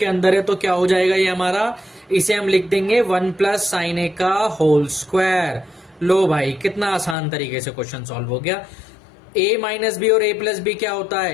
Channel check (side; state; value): right; drops out; at 7.2 s